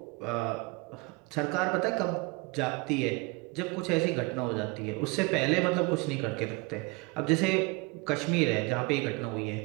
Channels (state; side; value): quieter; left; 28.0 dB